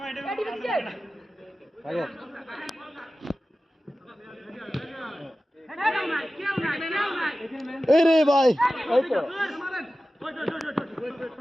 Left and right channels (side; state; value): both; normal; correlation 0.95